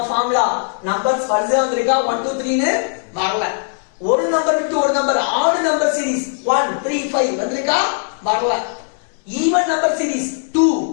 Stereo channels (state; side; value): silent; right; digital silence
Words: ஃபார்முலா நம்பர்ஸ் வரிசையா வந்திருக்கா? 1 2 3 னு வரல. ஒரு நம்பர் விட்டு ஒரு நம்பர் ஆட் நம்பர் சீரிஸ் 1 3 5 வந்திருக்கா? வரல. ஈவன் நம்பர் சீரிஸ் 2